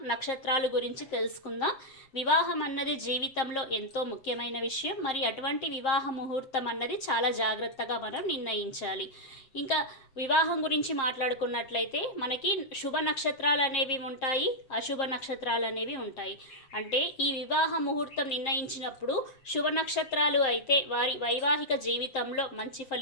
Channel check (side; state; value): right; late; 7.6 ms